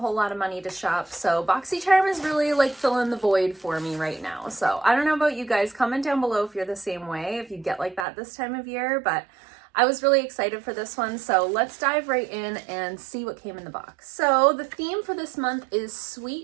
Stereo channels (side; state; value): left; drops out; at 8.1 s